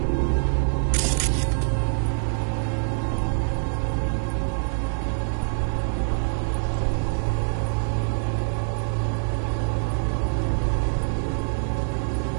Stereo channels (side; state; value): left; silent; 62 dB below the other